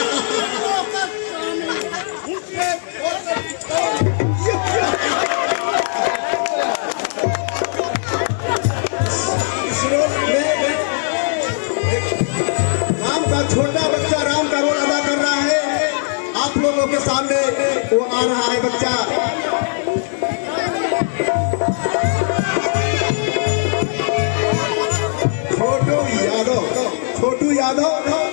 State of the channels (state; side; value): silent; right; 67 dB below the other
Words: राम का छोटा बच्चा राम का रोल अदा कर रहा है आप लोगों के सामने वो आ रहा है बच्चा छोटू यादव